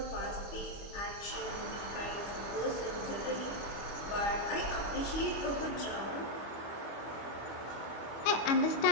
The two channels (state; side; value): late; right; 25 ms